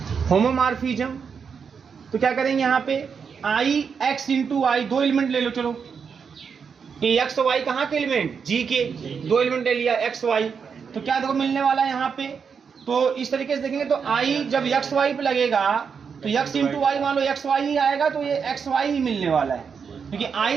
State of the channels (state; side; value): quieter; left; 6.3 dB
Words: होमोमॉर्फिज्म तो क्या करेंगे यहाँ पे आई एक्स इंटू आई, दो एलिमेंट ले लो, चलो कि एक्स वाई कहाँ के एलिमेंट, जी के, दो एलिमेंट ले लिया एक्स वाई, तो क्या देखो मिलने वाला है यहाँ पे। तो इस तरीके से देखेंगे तो आई जब एक्स वाई पे लगेगा तो एक्स इंटू वाई, मान लो एक्स वाई ही आएगा तो ये एक्स वाई ही मिलने वाला है, क्योंकि